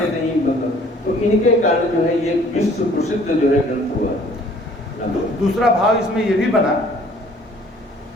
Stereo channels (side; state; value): both; normal; correlation 0.56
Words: नहीं, मतलब तो इनके कारण जो है ये विश्व प्रसिद्ध जो है ग्रंथ हुआ। दूसरा भाव इसमें ये भी बना